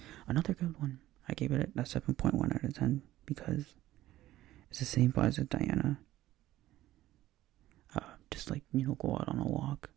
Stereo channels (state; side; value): quieter; left; 15.0 dB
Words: Another good one. I gave it a 7.1 out of 10 because it's the same vibe as Diana. Just like, you know, go out on a walk,